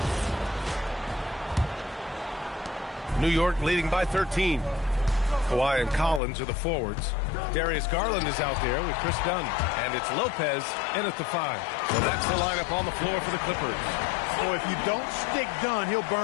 New York leading by 13. Kawhi and Collins are the forwards. Darius Garland is out there with Chris Dunn. And it's Lopez in at the 5. So that's the lineup on the floor for the Clippers. So if you don't stick Dunn, he'll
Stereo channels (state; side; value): drops out; right; at 6.2 s